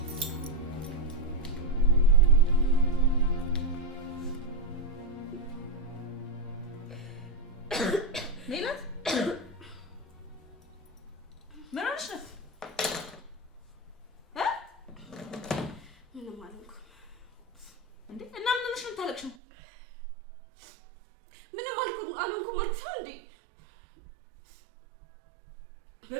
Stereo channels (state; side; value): drops out; left; at 19.4 s